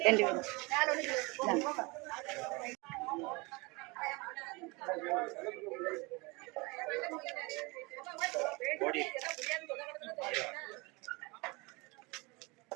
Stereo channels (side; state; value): left; quieter; 26.4 dB